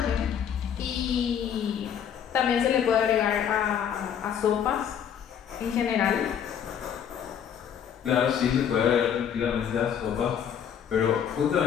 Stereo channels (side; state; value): right; quieter; 8.6 dB